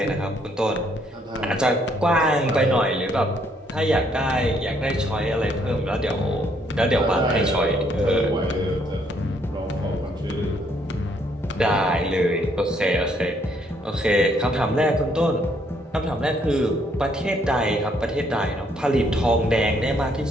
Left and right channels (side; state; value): both; normal; correlation 0.69